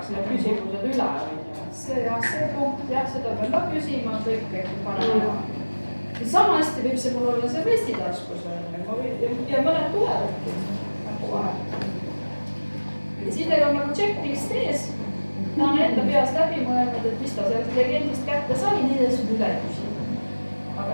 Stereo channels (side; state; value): both; inverted; correlation -1.00